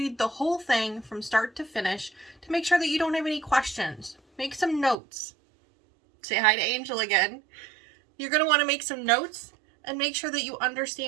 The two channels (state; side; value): drops out; left; at 5.0 s